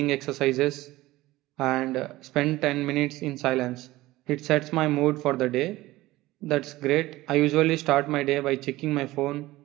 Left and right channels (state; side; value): quieter; left; 17.9 dB